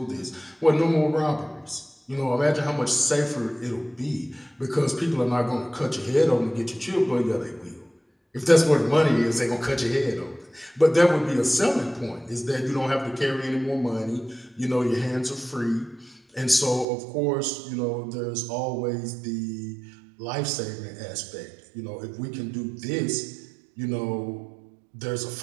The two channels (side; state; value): left; drops out; at 16.9 s